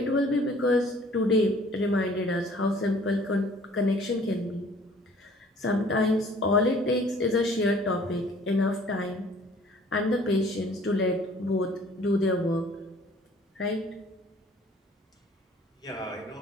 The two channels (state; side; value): normal; both; correlation 0.54